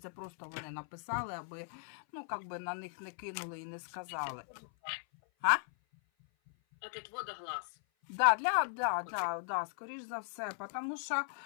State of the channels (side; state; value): right; silent; 53 dB below the other